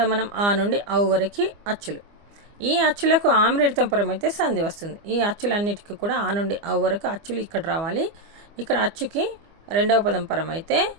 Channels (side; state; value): left; late; 25 ms